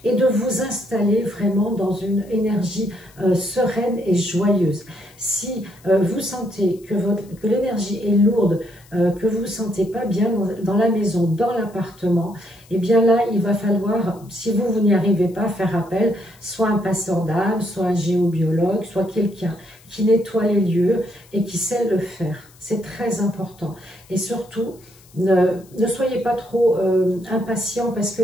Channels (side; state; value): left; noise; hiss, 27 dB below the sound